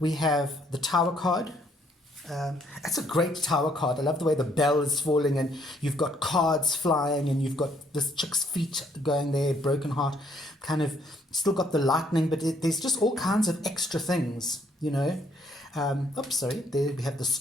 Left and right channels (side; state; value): both; normal; correlation 0.68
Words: have the tower card. That's a great tower card. I love the way the bell is falling and you've got cards flying and you've got this chick's feet going there, broken heart, kind of still got the lightning, but there's just all kinds of extra things, you know. Oops, sorry. There we have the